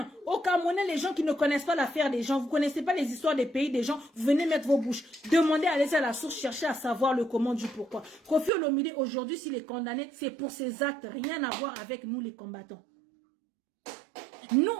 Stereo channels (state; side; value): drops out; left; at 8.5 s